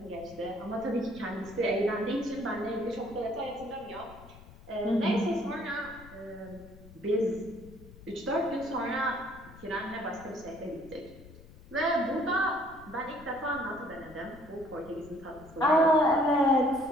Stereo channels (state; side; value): noise; left; rumble, 20 dB below the sound